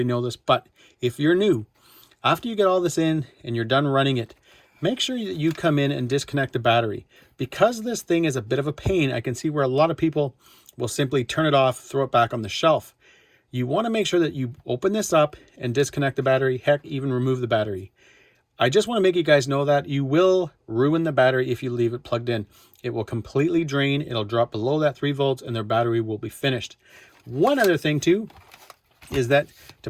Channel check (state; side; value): identical; both; correlation 1.00